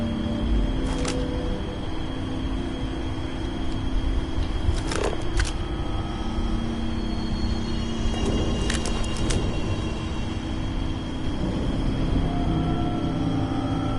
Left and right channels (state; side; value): identical; both; correlation 1.00